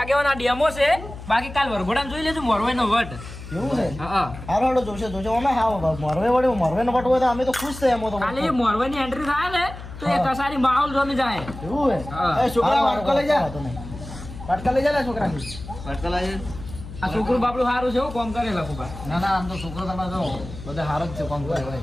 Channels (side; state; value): left; noise; hum, 13 dB below the sound